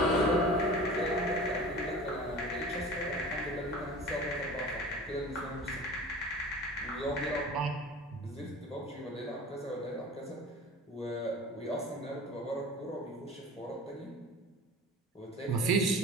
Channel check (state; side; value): normal; both; correlation 0.38